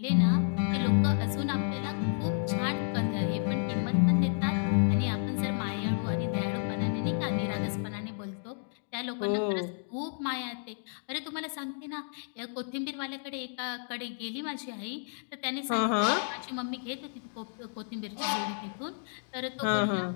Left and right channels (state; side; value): silent; right; digital silence